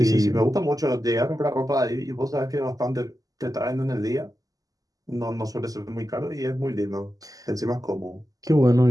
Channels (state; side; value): late; left; 0.17 ms